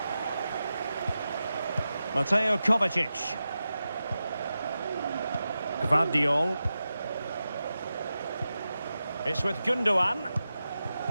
Mateo Kovacic. Gvardiol. It's with Gundogan.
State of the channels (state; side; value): inverted; both; correlation -0.92